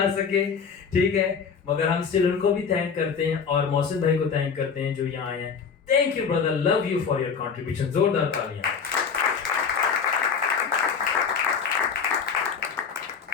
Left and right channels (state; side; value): quieter; right; 6.1 dB